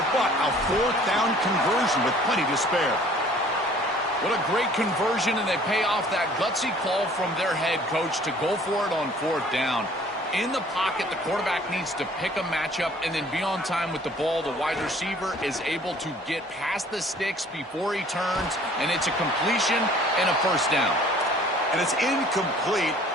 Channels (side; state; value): both; normal; correlation 0.54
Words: but a 4th down conversion with plenty to spare. What a great conversion, and they pay off that gutsy call from their head coach to go for it on 4th down. In the pocket, the quarterback needs to pick a matchup and then be on time with the ball. The wide receiver is able to get past the sticks before he turns, and it's a completion and a 1st down. And it's incomplete